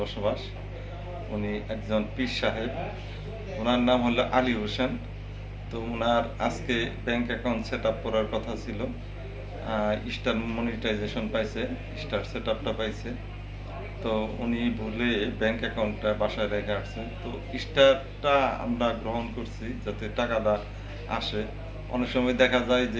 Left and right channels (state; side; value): identical; both; correlation 1.00